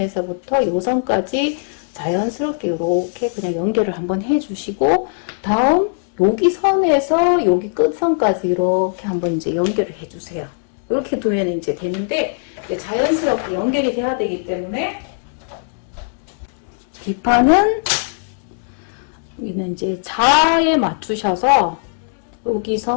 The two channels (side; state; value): right; silent; digital silence